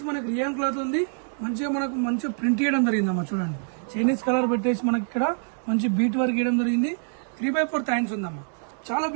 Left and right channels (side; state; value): left; silent; 61 dB below the other